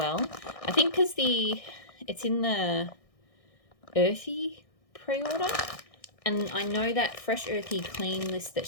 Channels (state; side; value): late; right; 1.6 ms